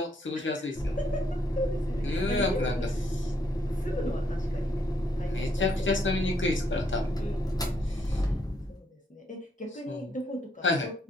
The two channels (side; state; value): both; normal; correlation 0.73